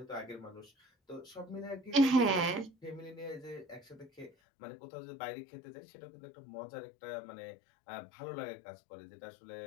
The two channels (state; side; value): drops out; right; at 4.3 s